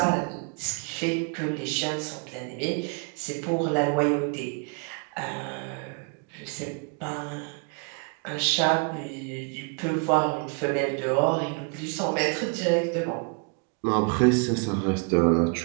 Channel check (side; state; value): left; quieter; 36.1 dB